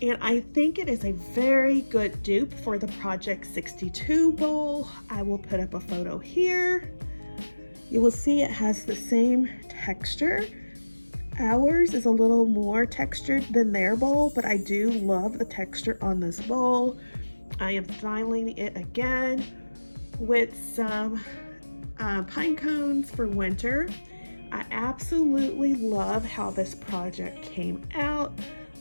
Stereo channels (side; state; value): both; inverted; correlation -1.00